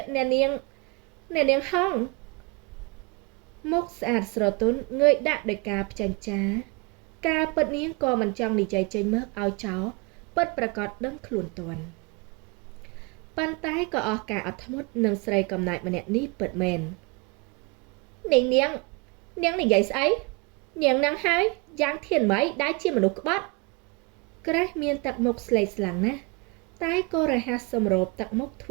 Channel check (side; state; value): left; quieter; 28.0 dB